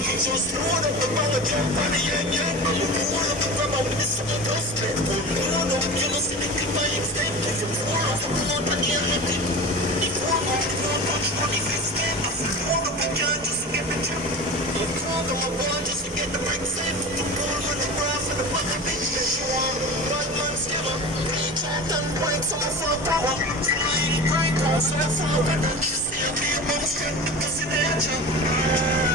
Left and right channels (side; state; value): both; normal; correlation 0.31